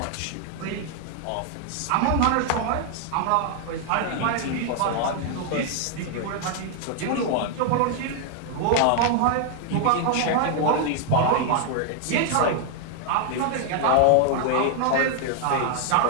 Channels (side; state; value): both; different; correlation 0.00